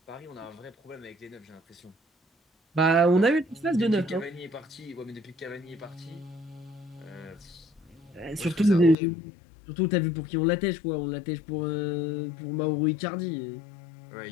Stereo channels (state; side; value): drops out; right; at 9.0 s